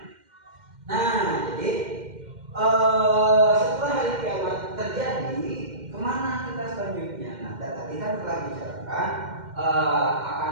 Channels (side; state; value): left; late; 2.1 ms